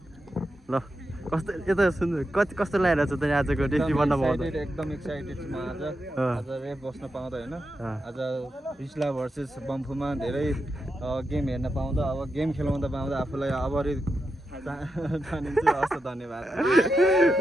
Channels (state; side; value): normal; both; correlation 0.87